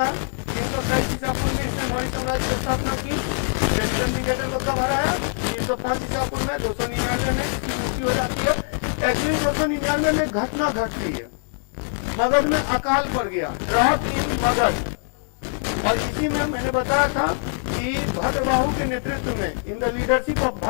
है. 323 ईसा पूर्व में इसने मौर्य साम्राज्य की स्थापना की. सेल्यूकस निकेटर को कब हराया? 305 ईसा पूर्व में. 299 में इसकी मृत्यु हो जाती है. एक्चुअली 299 में घटना घटती है, मगध में अकाल पड़ गया, ड्रॉट इन मगध. और इसी में मैंने बताया था कि भद्रबाहु के नेतृत्व में, in the leadership of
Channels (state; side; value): silent; right; 59 dB below the other